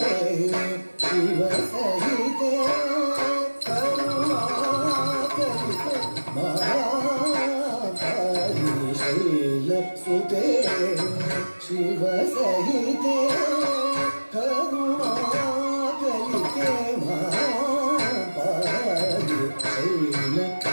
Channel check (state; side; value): inverted; both; correlation -1.00